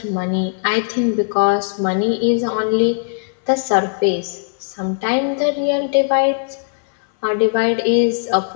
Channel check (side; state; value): right; silent; 62 dB below the other